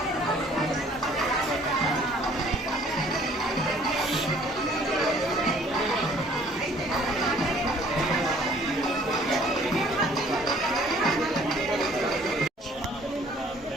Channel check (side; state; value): both; normal; correlation 0.57